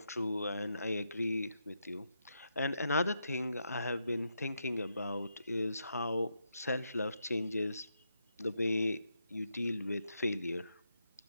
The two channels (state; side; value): inverted; both; correlation -0.82